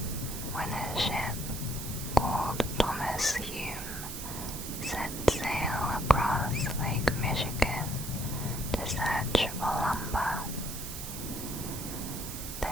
when a ship called Thomas Hume set sail across Lake Michigan to search for lumber. The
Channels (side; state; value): right; noise; hiss, 8 dB below the sound